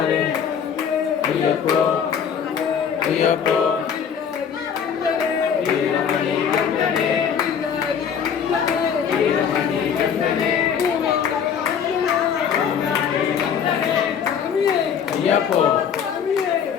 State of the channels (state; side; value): quieter; right; 7.5 dB